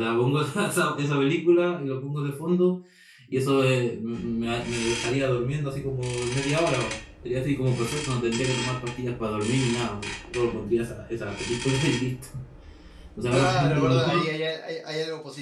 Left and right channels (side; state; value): both; identical; correlation 1.00